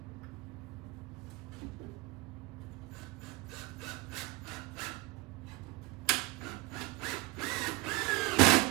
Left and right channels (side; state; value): left; quieter; 22.4 dB